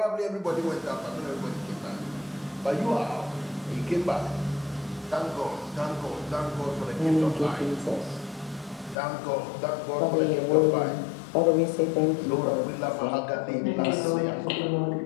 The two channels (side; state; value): right; drops out; at 9.0 s